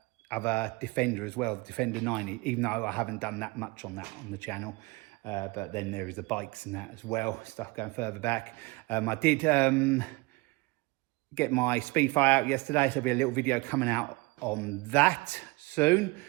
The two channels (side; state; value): left; quieter; 24.3 dB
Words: Defender as well, the Defender 90, even though I haven't done that much on that on the channel. But then there is the bikes and that as well, stuff going further back. I did get my Speed Fight out yesterday, so there'll be a little video coming out on that soon.